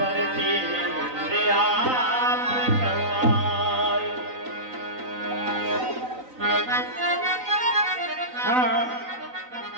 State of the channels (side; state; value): left; late; 3.9 ms